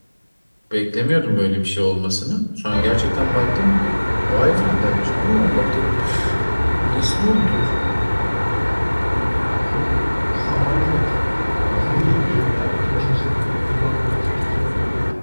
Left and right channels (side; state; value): both; inverted; correlation -1.00